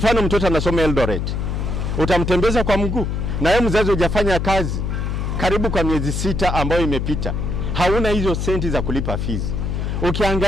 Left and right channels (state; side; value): noise; left; hum, 2 dB below the sound